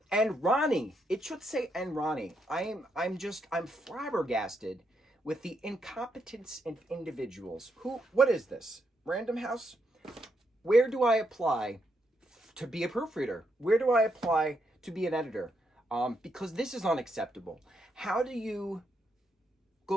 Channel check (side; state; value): both; normal; correlation 0.79